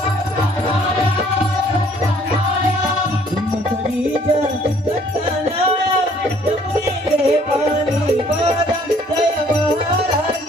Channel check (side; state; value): both; normal; correlation 0.60